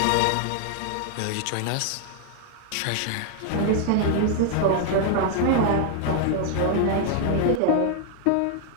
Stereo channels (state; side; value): different; both; correlation 0.00